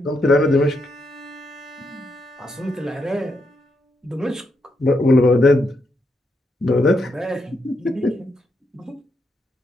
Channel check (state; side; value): normal; both; correlation 0.80